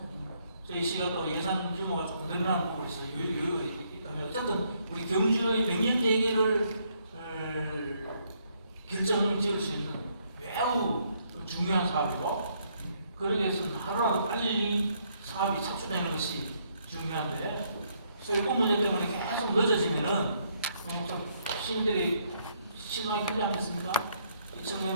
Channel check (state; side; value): inverted; both; correlation -0.71